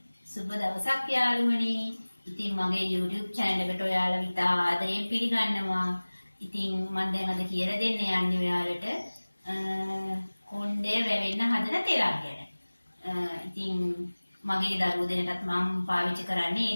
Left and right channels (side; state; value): both; inverted; correlation -1.00